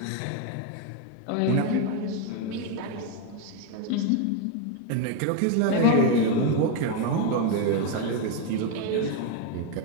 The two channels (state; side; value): different; both; correlation 0.01